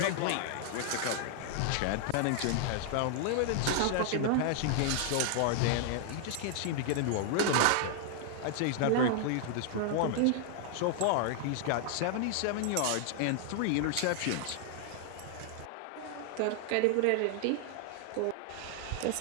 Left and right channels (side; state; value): both; different; correlation 0.00